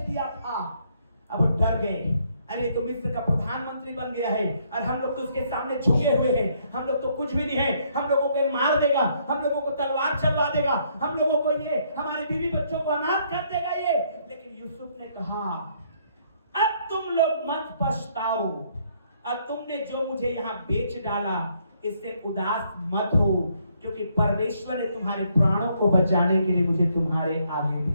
था। अब वो डर गए, अरे तो मिस्र का प्रधानमंत्री बन गया है, और हम लोग तो उसके सामने झुके हुए हैं, हम लोग तो कुछ भी नहीं है, हम लोगों को मार देगा, हम लोगों को तलवार चलवा देगा, हम लोगों को ये हमारे बीवी बच्चों को अनाथ कर देगा ये। लेकिन यूसुफ ने कहा, अब तुम लोग मत पछताओ, और तुमने जो मुझे यहाँ बेच डाला इससे उदास मत हो, क्योंकि परमेश्वर ने तुम्हारे प्राणों को बचाने के लिए मुझे तुम्हारे आगे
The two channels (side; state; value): both; inverted; correlation -0.69